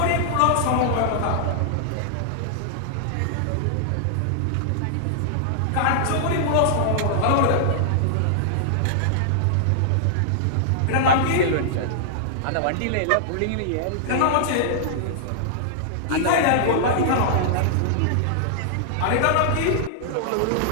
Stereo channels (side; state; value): both; different; correlation -0.01